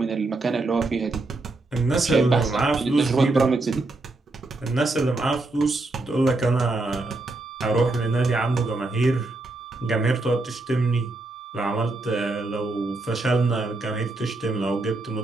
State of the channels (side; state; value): left; quieter; 3.1 dB